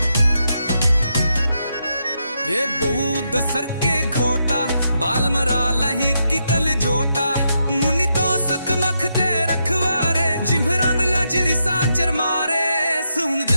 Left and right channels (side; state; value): both; inverted; correlation -0.82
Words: ये बूद सर के घोटा, बाल मरा लही की कल जोटा, मुनि तो सुख मखते रखवारे, जिम्हरान लाजरी साचर मारे। सुन